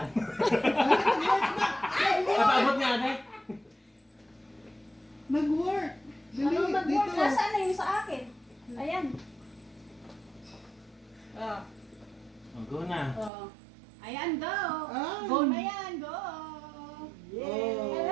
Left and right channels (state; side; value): drops out; left; at 13.3 s